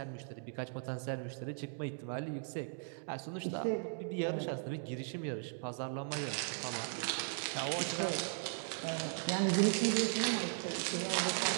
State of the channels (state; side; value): silent; left; digital silence